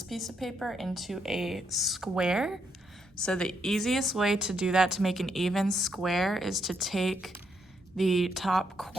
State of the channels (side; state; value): both; normal; correlation 0.77